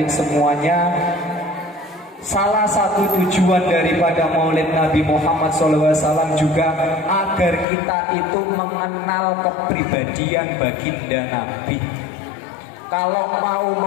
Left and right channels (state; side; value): drops out; right; at 7.7 s